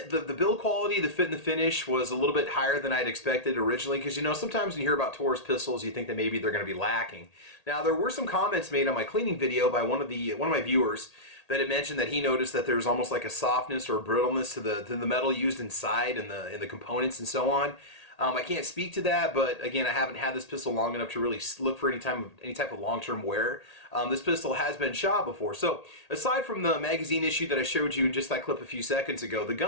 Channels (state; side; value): late; right; 1.8 ms